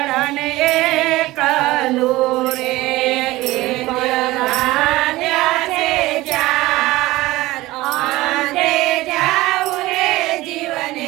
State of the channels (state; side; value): quieter; left; 18.7 dB